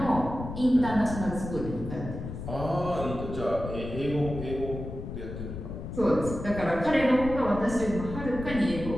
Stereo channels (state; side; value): noise; left; rumble, 8 dB below the sound